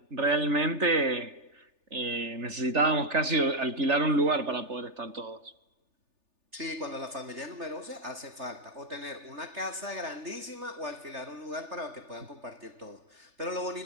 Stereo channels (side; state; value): left; late; 3.3 ms